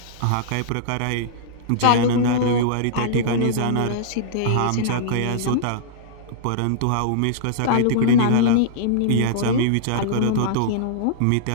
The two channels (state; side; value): different; both; correlation -0.02